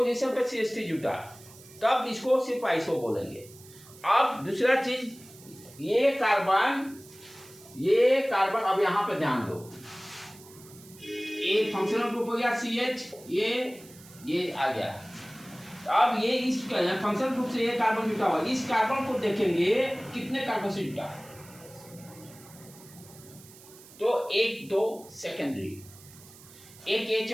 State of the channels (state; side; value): noise; right; hiss, 21 dB below the sound